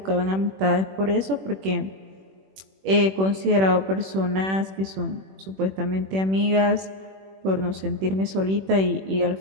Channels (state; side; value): late; left; 21 ms